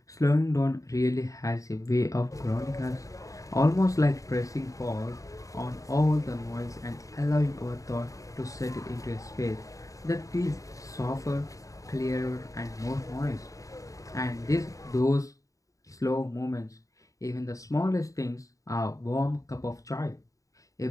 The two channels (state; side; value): late; right; 0.16 ms